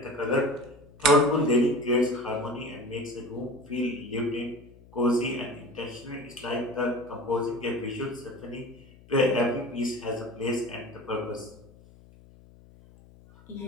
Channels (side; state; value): left; noise; hum, 23 dB below the sound